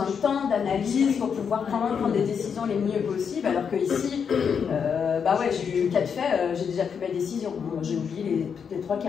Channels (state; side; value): quieter; right; 6.8 dB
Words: de temps, d'analyse pour pouvoir prendre des décisions les mieux possibles. Alors que ici, bah ouais, j'ai eu 4 faits, j'ai déjà pris ma décision. Bon, j'ai oublié les 3